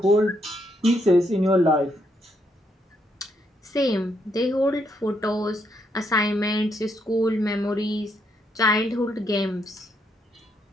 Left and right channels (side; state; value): both; normal; correlation 0.75